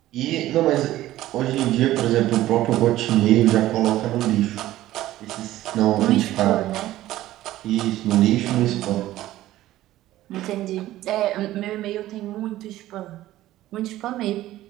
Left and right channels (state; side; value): quieter; left; 15.0 dB